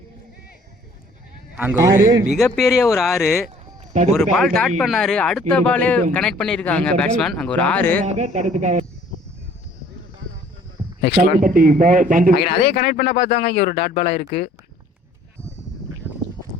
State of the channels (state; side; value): normal; both; correlation 0.56